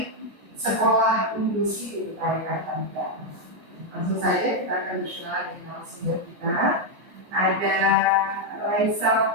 sekolah inklusi di Keparikan Negara. Langsung saja kita akan berkenalan dengan narasumber kita. Ada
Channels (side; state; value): left; late; 14 ms